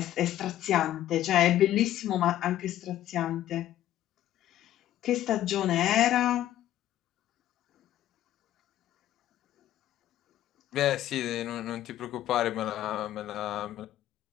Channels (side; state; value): right; quieter; 12.9 dB